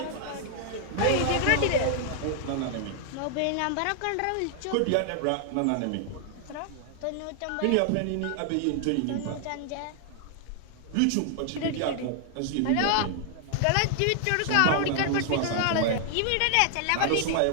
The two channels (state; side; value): different; both; correlation 0.00